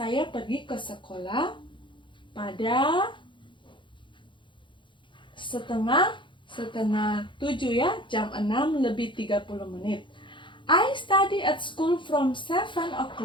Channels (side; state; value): right; late; 0.24 ms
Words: pergi ke sekolah pada setengah 7 ya, jam 6:30. I study at school from 7